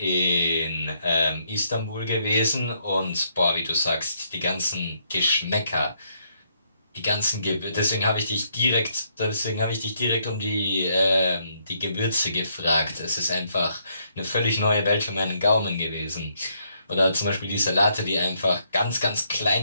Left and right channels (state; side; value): inverted; both; correlation -0.72